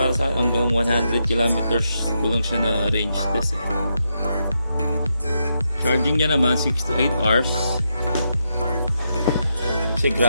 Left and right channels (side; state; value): both; inverted; correlation -0.82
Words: sa hanggang 100 kilometers ko lang siya na range test eh. Charging niya naman 6 to 8 hours kasi